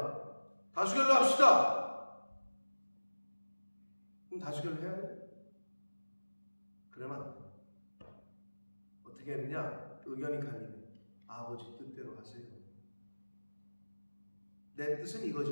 다수결로 합시다. 그럼 다수결로 해야 돼? 그러면 안 돼. 어떻게 했느냐? 의견이 갈리면 아버지 뜻대로 하세요. 내 뜻은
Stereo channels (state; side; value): inverted; both; correlation -1.00